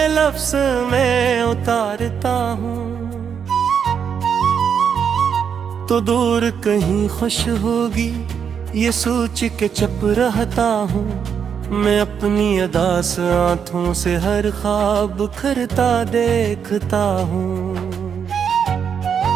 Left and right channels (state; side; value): quieter; left; 7.3 dB